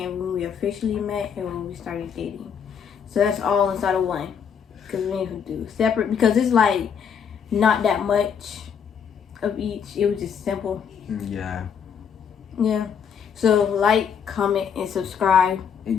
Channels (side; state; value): right; quieter; 7.3 dB